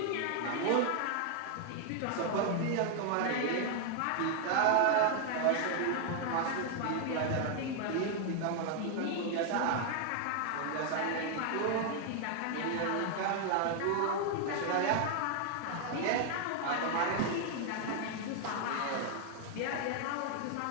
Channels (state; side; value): different; both; correlation 0.00